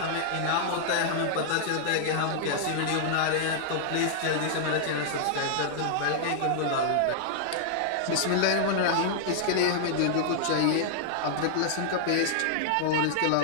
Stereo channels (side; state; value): both; different; correlation -0.01